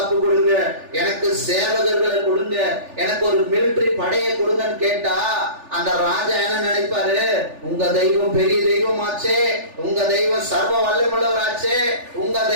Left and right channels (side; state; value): left; late; 3.4 ms